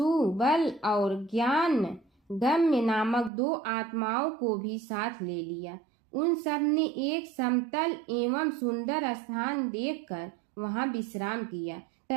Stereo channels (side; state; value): left; drops out; at 3.3 s